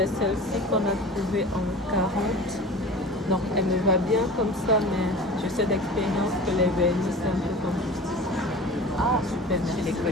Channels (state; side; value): normal; both; correlation 0.37